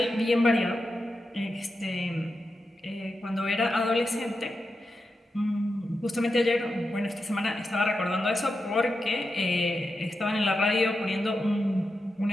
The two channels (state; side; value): normal; both; correlation 0.88